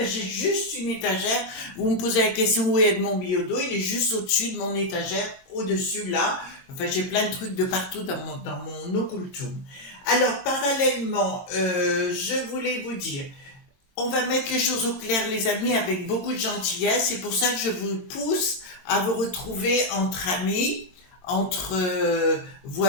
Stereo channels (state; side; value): late; right; 22 ms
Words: juste une étagère. Vous me posez la question où est Edmond Biyodo, il est juste au-dessus de mon étagère, au-dessus là. Enfin, j'ai plein de trucs de partout dans mon occultum. Alors, parallèlement, je voulais vous dire, on va mettre les choses au clair, les amis, avec beaucoup de gentillesse. C'est pour ça que je vous pousse à vous retrouver entre amis, entre